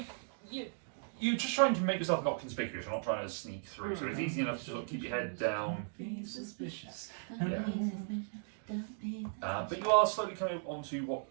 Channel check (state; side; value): silent; left; digital silence